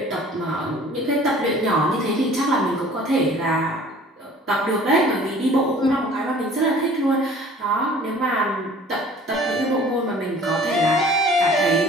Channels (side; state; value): both; normal; correlation 0.49